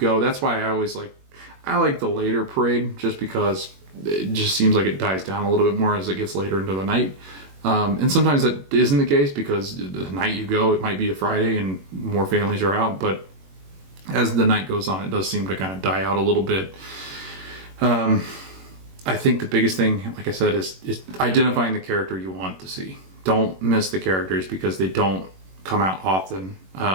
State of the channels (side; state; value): left; late; 21 ms